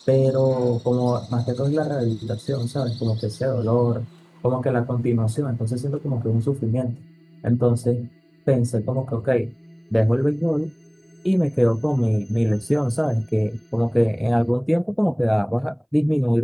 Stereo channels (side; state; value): both; identical; correlation 1.00